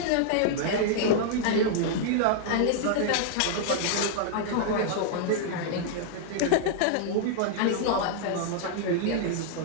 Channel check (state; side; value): different; both; correlation -0.01